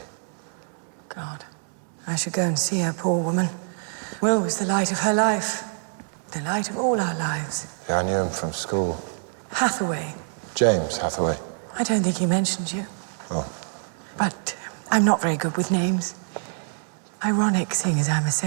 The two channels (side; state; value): left; silent; 61 dB below the other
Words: God, I should go and see her, poor woman. Will was the light of her life. The light of all our lives. Yeah, I knew him from school. Hathaway. James Hathaway. I don't think he mentioned you. Oh. But I'm not very good with names. Ironic, seeing as I'm a